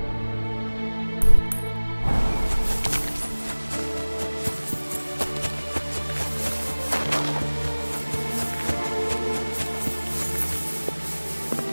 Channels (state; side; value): inverted; both; correlation -1.00